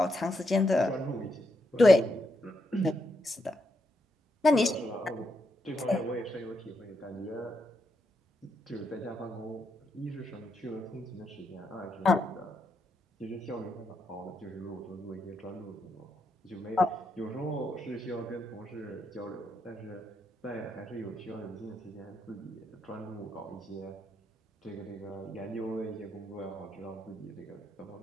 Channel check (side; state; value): both; normal; correlation 0.80